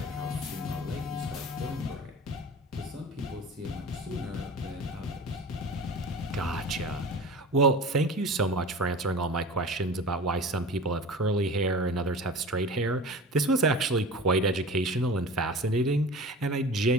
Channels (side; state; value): both; normal; correlation 0.36